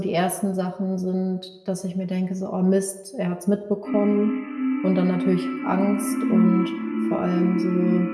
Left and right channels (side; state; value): both; identical; correlation 1.00